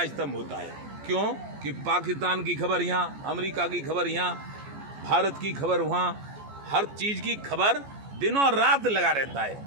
स्तंभ होता है। क्यों? कि पाकिस्तान की खबर यहाँ, अमेरिका की खबर यहाँ, भारत की खबर वहाँ, हर चीज़ की खबर दिनों रात लगा रहता है।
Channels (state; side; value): late; left; 14 ms